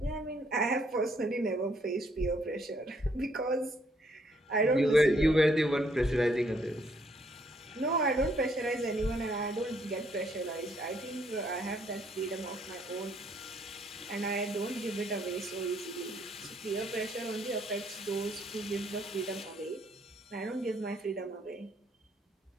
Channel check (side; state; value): both; normal; correlation 0.69